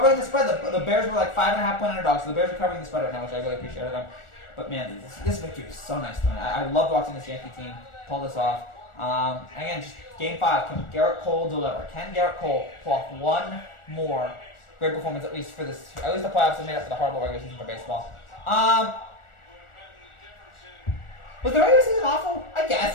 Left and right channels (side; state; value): right; late; 1.4 ms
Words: the spread. The Bears were like 5.5-point underdogs, so the Bears are covering the spread right now, which I really appreciate them. But man, this victory is so nice tonight. I loved watching this Yankee team pull this off. Again, just Game 5. Can Garrett Cole deliver? Can Garrett Cole pull off one more great performance at least the playoffs are made up for the horrible regular season for baseball? Was the regular season awful? I